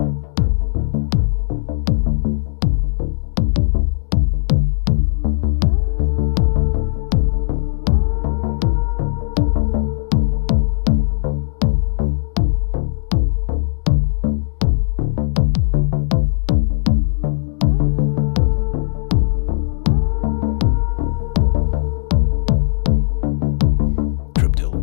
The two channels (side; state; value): right; silent; digital silence